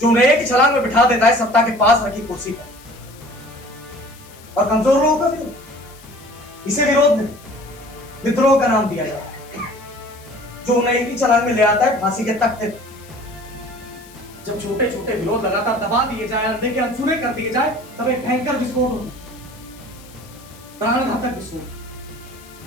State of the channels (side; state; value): left; noise; hiss, 23 dB below the sound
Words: जो उन्हें एक ही छलांग में बिठा देता है सत्ता के पास रखी कुर्सी पर। और कमजोर लोगों का विरोध, इसे विरोध नहीं, विद्रोह का नाम दिया जाता है, जो उन्हें एक ही छलांग में ले आता है फांसी के तख्ते पर। जब छोटे छोटे विरोध लगातार दबा दिए जाए, अंधे के अनसुने कर दिए जाए, तब एक भयंकर विस्फोट होता है, प्राणघातक विस्फोट।